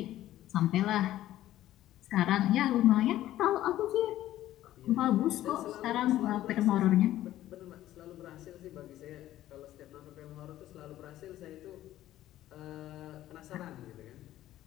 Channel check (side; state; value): right; quieter; 13.8 dB